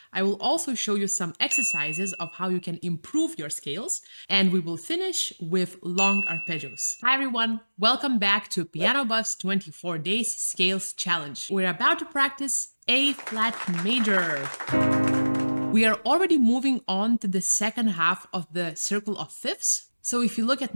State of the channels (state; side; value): inverted; both; correlation -1.00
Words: I will also show you some exercises of how you can improve your scales, and we will finish with long arpeggios. Hi everyone, welcome back to PianoBuffs 24 Days Scales Challenge. We're about to practice A flat major. We are already moving on to the second half of the circle of fifths. So if you look at